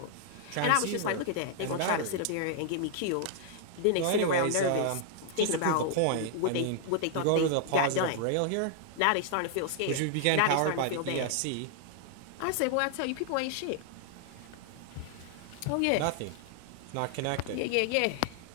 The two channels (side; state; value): both; different; correlation 0.00